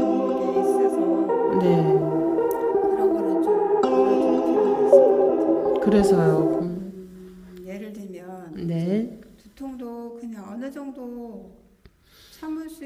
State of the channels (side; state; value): both; identical; correlation 1.00